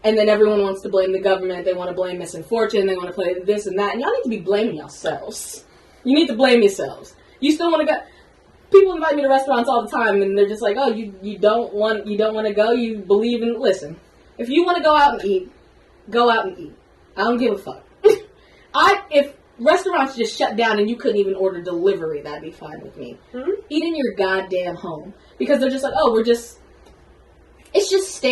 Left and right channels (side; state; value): both; identical; correlation 1.00